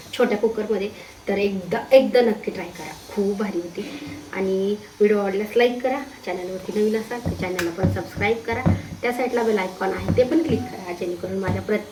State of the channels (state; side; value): identical; both; correlation 1.00